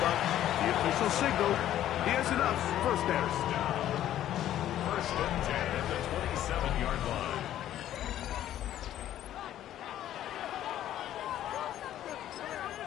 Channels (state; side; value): quieter; right; 12.1 dB